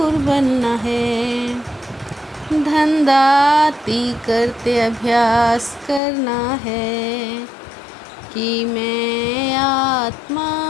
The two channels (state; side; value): drops out; right; at 6.0 s